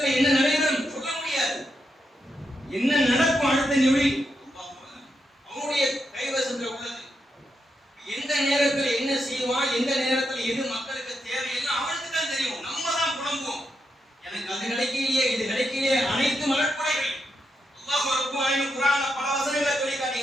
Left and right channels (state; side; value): normal; both; correlation 0.84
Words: என்ன நடைபெறும் சொல்ல முடியாது. என்ன நடக்கும் அடுத்த நிமிடி அவனுடைய கைவசத்துல உள்ளது. எந்த நேரத்தில் என்ன செய்வான், எந்த நேரத்தில் எது மக்களுக்கு தேவையில்லை அவனுக்கு தான் தெரியும். நம்ம தான் புலம்புவோம், எனக்கு அது கிடைக்கலையே இது கிடைக்கலையே. அனைத்து அருட்படைகள் அல்லாஹ் ரப்பல் ஆலமீன் குர்ஆன்ல பல வசனங்களை சொல்லி